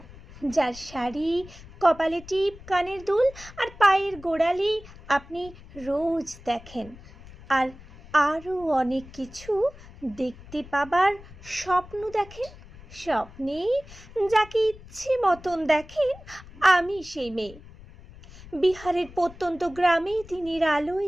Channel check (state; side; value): noise; left; rumble, 19 dB below the sound